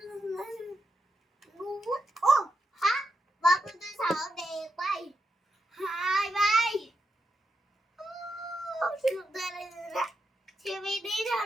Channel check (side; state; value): both; normal; correlation 0.84